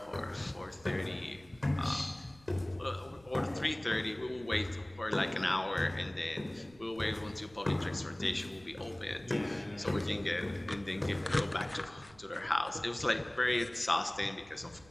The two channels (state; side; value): noise; right; rumble, 25 dB below the sound